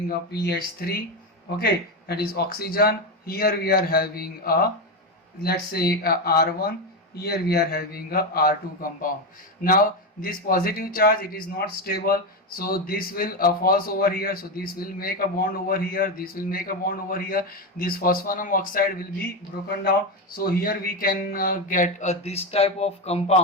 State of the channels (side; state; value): both; normal; correlation 0.13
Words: a PH3, okay, that is oxygen. Here we are having a, let's say, R1, here we are having a R2 compound. Now this positive charge, it is not stable, so this will falls over here, so this will make a bond over here, this will make a bond over here, this phosphanum oxide will be broken down. So here we can get this type of